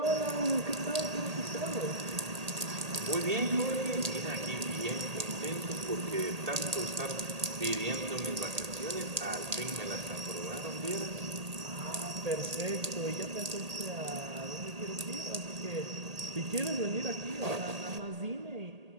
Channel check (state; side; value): late; left; 1.8 ms